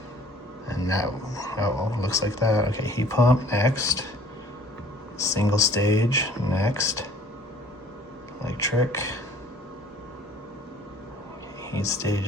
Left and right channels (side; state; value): both; normal; correlation 0.53